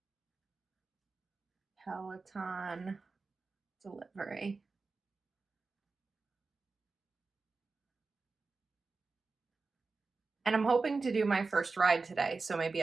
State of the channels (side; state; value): left; quieter; 4.1 dB